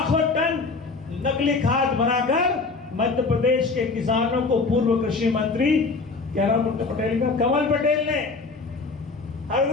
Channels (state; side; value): quieter; right; 4.0 dB